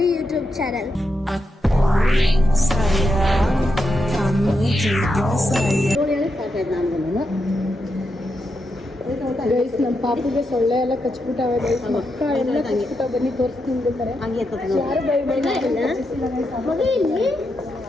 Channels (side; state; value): both; normal; correlation 0.85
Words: YouTube channel. Guys ನಮ್ಮ ಪಾಪುಗೆ ಸೊಳ್ಳೆ ಎಲ್ಲ ಕಚ್ಬಿಟ್ಟಾವೆ ಗೈಸ್ ಮಕ್ಕ ಎಲ್ಲ ಕಚ್ಬಿಟ್ಟಾವ ಬನ್ನಿ ತೋರಿಸ್ತೀನಿ ಬೇಕಾರೆ ಯಾರು ಬೈ ಬೈ